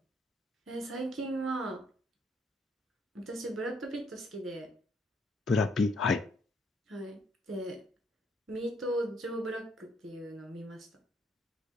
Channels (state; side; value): normal; both; correlation 0.69